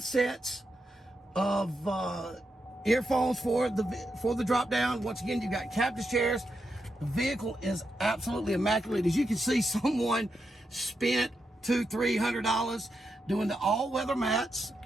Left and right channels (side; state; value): both; normal; correlation 0.85